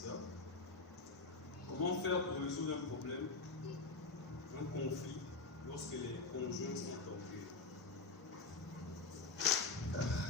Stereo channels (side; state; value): right; quieter; 3.9 dB